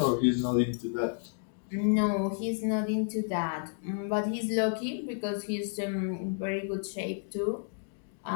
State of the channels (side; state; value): right; silent; 57 dB below the other